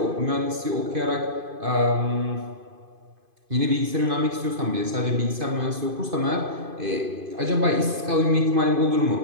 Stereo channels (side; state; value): left; late; 2.5 ms